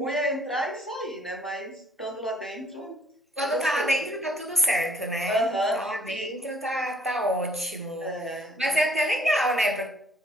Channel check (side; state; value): both; normal; correlation 0.63